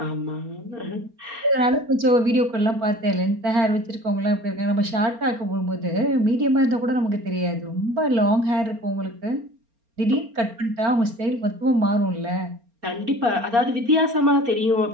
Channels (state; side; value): late; left; 4.3 ms